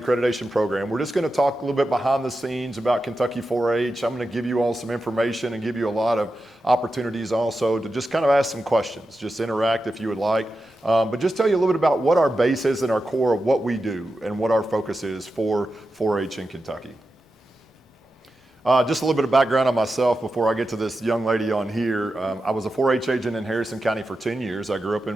accreditation program, we're just going to talk a little bit behind the scenes about Kentucky 4-H. I'm going to give you all some information and give you a lot of opportunities also to just kind of ask some questions, just interact if you would like, but just tell you a little bit about what our base is and our core of what we do and what our focus is for 4-H in Kentucky. Just a little bit of background on myself before I get to this young lady on here. I was a 4-H agent in Harrison County for 10 years. I grew up in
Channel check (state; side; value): normal; both; correlation 0.90